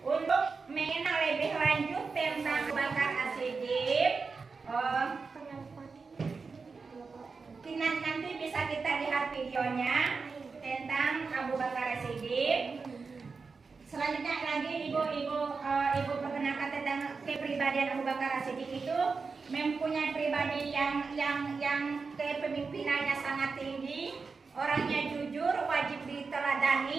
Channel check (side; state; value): left; quieter; 4.7 dB